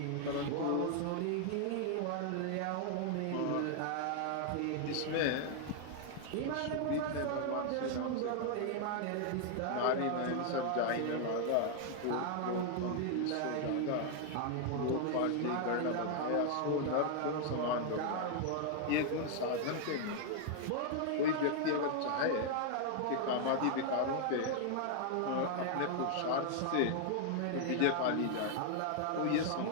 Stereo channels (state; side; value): different; both; correlation 0.00